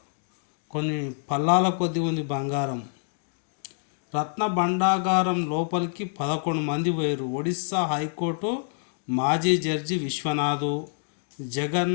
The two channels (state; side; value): silent; right; digital silence